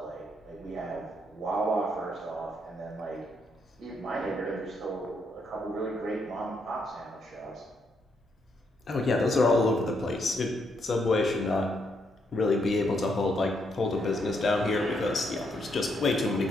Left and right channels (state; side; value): normal; both; correlation 0.76